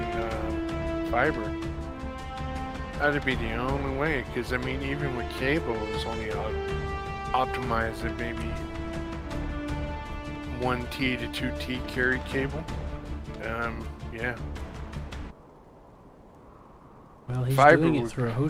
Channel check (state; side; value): identical; both; correlation 1.00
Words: fiber. That'd be the only way, because I mean, even with cable, it's only optimized at maybe 1T to 2T carried cable. Yeah. Well, he's Fiber doing it would- through a